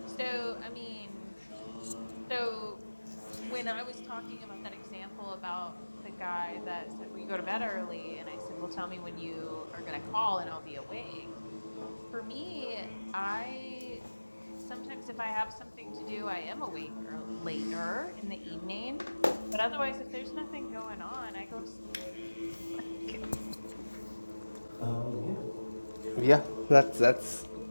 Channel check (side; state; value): both; inverted; correlation -1.00